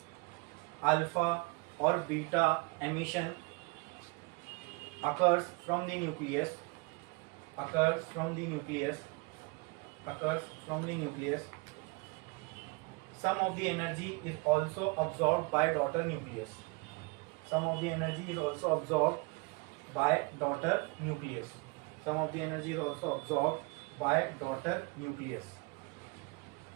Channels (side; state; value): left; quieter; 28.3 dB